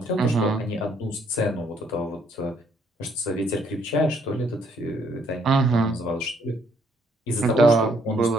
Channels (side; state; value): both; normal; correlation 0.68